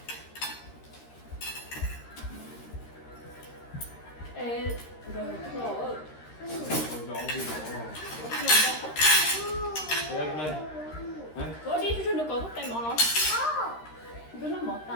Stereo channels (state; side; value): late; right; 13 ms